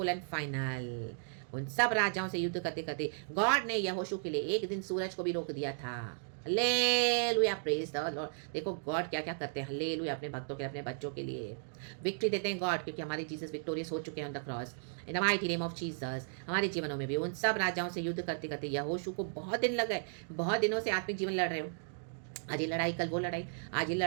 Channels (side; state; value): left; silent; digital silence